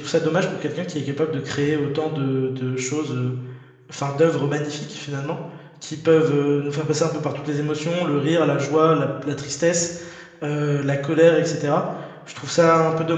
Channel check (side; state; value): both; identical; correlation 1.00